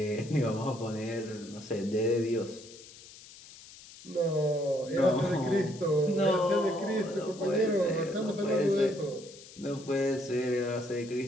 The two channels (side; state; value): left; noise; hiss, 19 dB below the sound